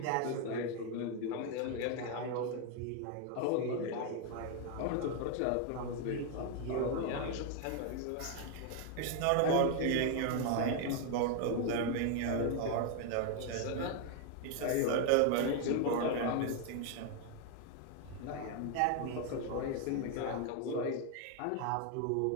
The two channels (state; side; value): different; both; correlation 0.00